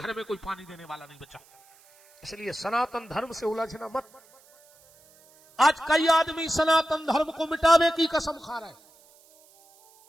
में कोई पानी देने वाला नहीं बचा। इसलिए सनातन धर्म से उलझना मत। आज कई आदमी सनातन धर्म को मिटाने की कसम खा रहे हैं।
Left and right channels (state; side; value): noise; right; hiss, 28 dB below the sound